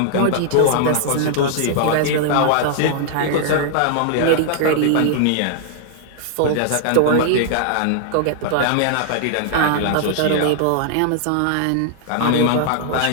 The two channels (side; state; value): both; different; correlation -0.01